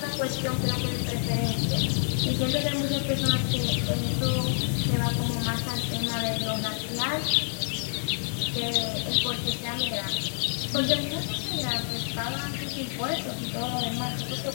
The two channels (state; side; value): silent; right; digital silence